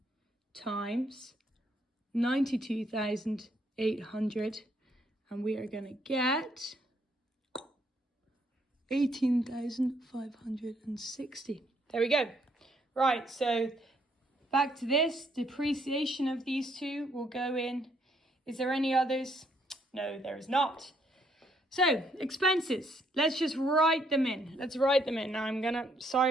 times 92,800, and we are going to get 18,560. There we go. Right, so back to this. Depreciation of these two will go in. Is there any others? No, there is not. So, expenses. Let's just write them in. Let's write them in. Now sorry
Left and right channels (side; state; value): both; normal; correlation 0.70